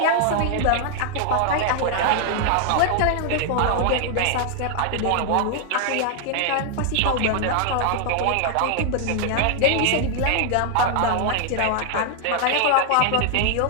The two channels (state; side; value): different; both; correlation 0.00